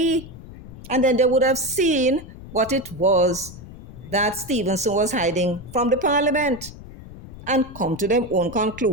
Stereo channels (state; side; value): noise; left; rumble, 16 dB below the sound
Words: And then they would have seen what it was that Stevenson was hiding from the Parliament and come to their own